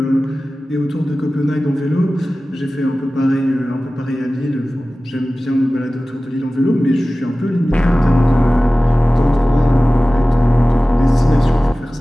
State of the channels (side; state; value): both; normal; correlation 0.97